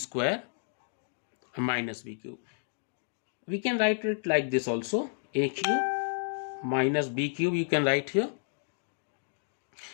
minus b cube. We can write it like this also. A cube minus b cube, you can write here.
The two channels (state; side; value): silent; right; digital silence